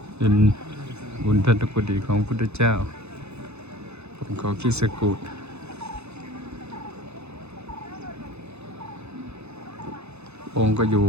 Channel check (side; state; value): left; late; 0.81 ms